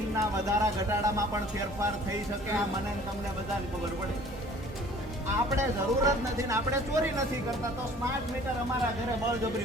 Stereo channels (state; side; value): normal; both; correlation 0.51